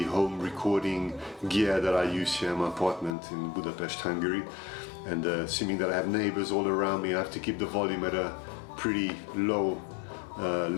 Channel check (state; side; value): drops out; right; at 3.2 s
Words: home recording gear that I use here in my apartment in Budapest, Hungary. And assuming that I have neighbors all around me, I have to keep the volume at a pretty low